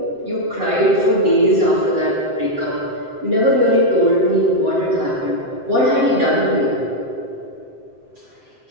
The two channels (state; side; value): late; left; 7.7 ms